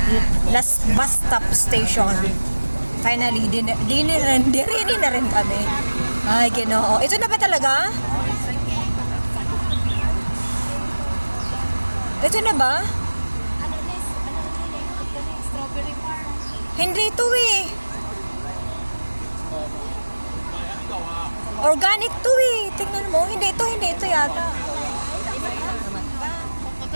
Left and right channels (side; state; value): both; inverted; correlation -1.00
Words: last bus stop station. Finally, dirini na rin kami. Ay, Ginoo. Ito na ba talaga? Ito na ba? Hindi ito organic to tingnan mo, hindi ito yata.